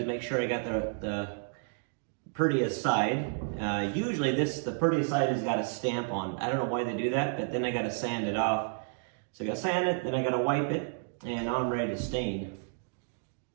make sure I got the prettiest side. Usually the prettiest side has got a stamp on. I don't know why they do that, but then I got to sand it off. So I got to sand it, then I got to wipe it, and I'm ready to stain.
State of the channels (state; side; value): silent; left; digital silence